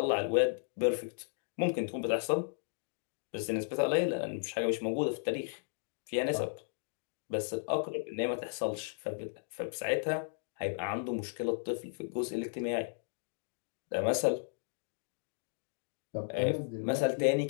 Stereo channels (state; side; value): silent; right; digital silence